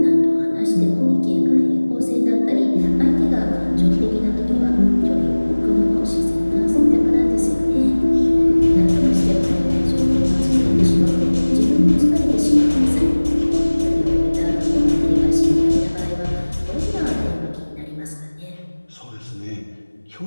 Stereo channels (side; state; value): both; inverted; correlation -1.00